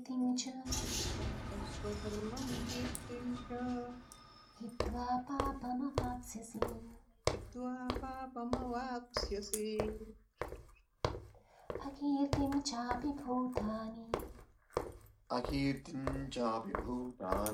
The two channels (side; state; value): both; identical; correlation 1.00